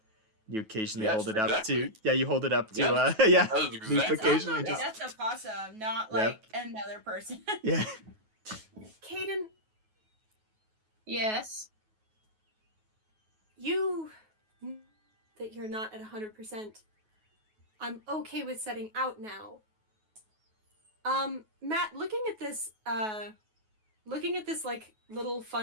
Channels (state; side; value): late; left; 9.3 ms